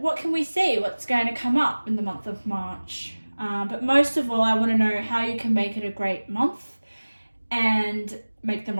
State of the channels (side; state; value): both; inverted; correlation -1.00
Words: can we see? What's going to come up in the month of March? But most of all, I want to know how you can make it a great month and make the